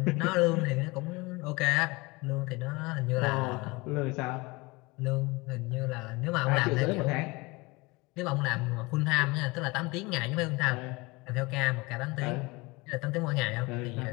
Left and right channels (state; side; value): quieter; right; 24.4 dB